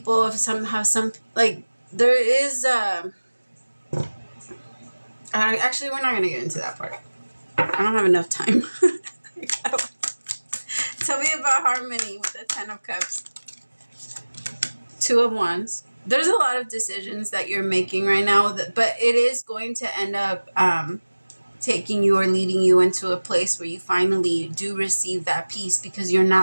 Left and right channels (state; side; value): inverted; both; correlation -1.00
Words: of somehow, some, like there is actually, we're not going to get into that part. I don't have enough time. Tell me about harmony with the 10 of Cups. 2 of Wands. There's a lot of decisions that you're making right now, but it is going to end up taking you or leading you into a place where you finally do receive that peace, because you're